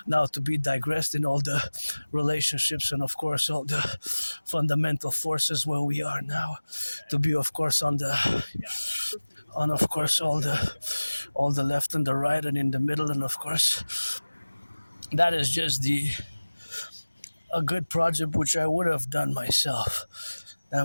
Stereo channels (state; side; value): inverted; both; correlation -1.00